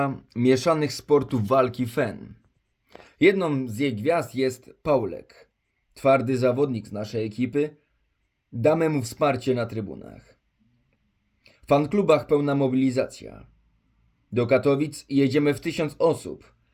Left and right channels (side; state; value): both; identical; correlation 1.00